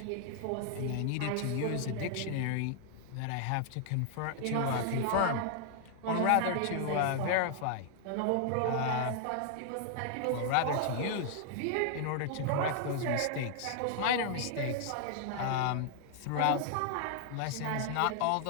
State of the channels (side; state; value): both; different; correlation 0.00